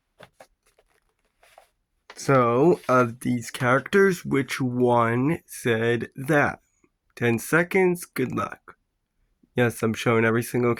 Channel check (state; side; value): identical; both; correlation 1.00